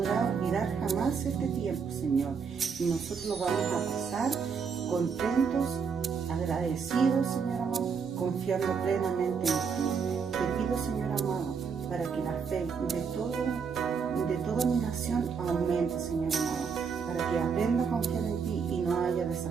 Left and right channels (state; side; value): quieter; left; 6.0 dB